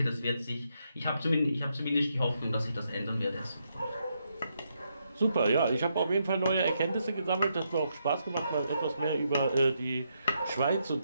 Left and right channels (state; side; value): inverted; both; correlation -0.79